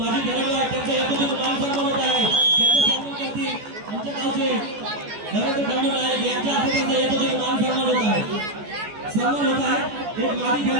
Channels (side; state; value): left; late; 14 ms